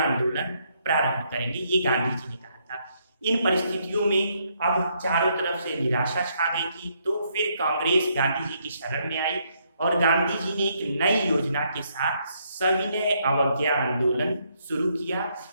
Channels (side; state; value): both; inverted; correlation -0.73